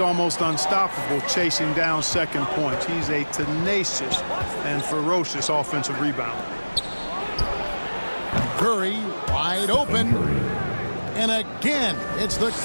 unstoppable chasing down second points. He's a tenacious and ferocious offensive rebounder. Curry wide open. And again, it's the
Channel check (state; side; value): inverted; both; correlation -1.00